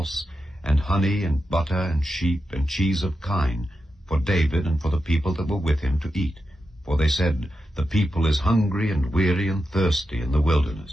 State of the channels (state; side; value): normal; both; correlation 0.89